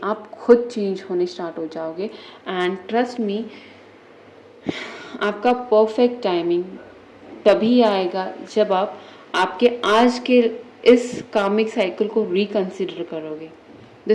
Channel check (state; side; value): identical; both; correlation 1.00